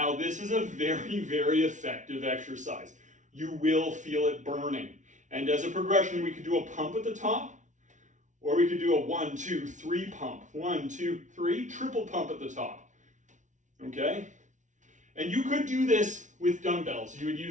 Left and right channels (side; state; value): left; late; 0.36 ms